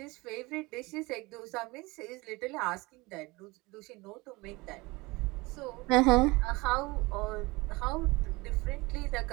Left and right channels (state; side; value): quieter; left; 23.2 dB